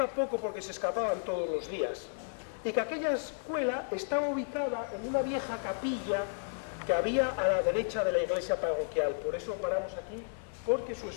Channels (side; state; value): right; silent; digital silence